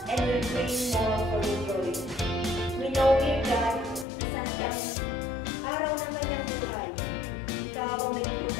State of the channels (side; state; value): right; drops out; at 4.0 s